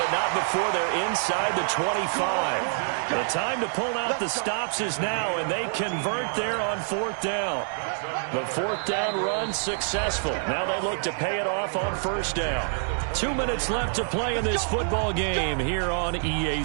not before they're inside the 25. The time to pull out the stops is now, and they convert there on 4th down. The 4th down run successful. Now they look to pay it off on 1st down. 2 minutes left to play in this football game here on EA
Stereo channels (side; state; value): left; silent; digital silence